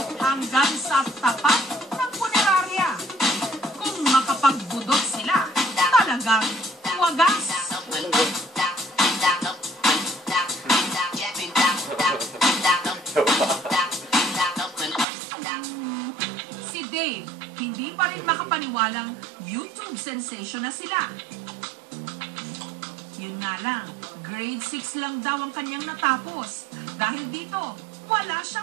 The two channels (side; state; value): left; drops out; at 15.1 s